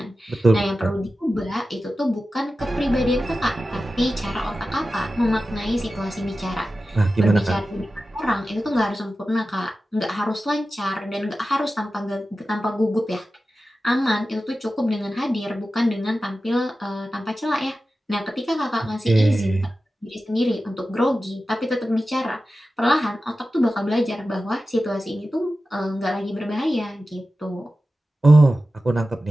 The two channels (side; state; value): both; normal; correlation 0.94